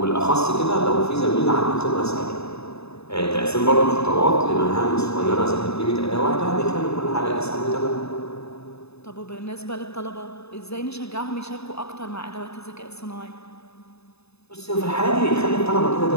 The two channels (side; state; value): right; late; 0.79 ms